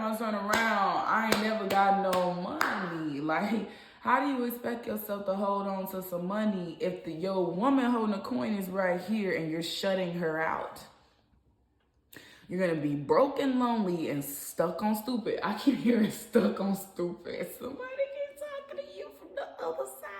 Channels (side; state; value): both; identical; correlation 1.00